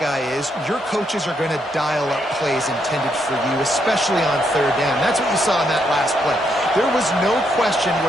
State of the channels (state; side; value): normal; both; correlation 0.77